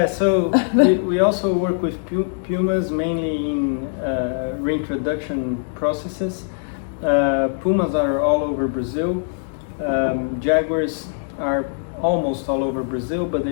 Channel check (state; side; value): silent; right; digital silence